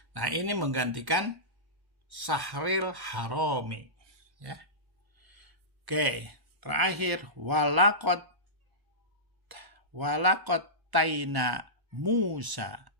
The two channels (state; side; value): late; left; 1.1 ms